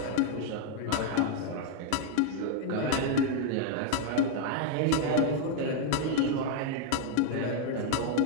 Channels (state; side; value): different; both; correlation 0.01